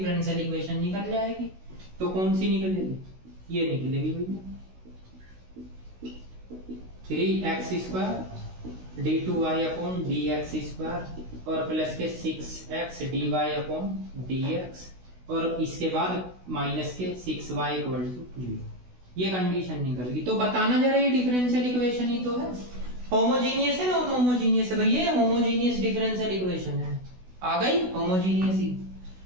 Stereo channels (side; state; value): left; late; 16 ms